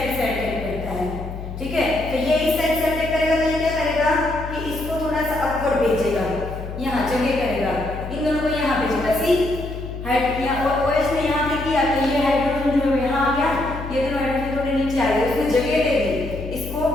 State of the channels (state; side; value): noise; left; hum, 8 dB below the sound